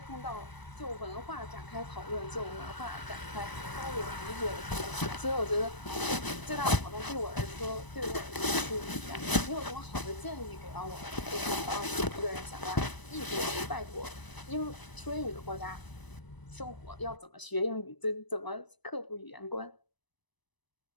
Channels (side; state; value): right; late; 1.0 ms